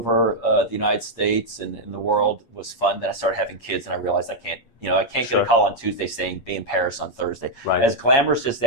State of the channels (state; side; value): late; right; 8.5 ms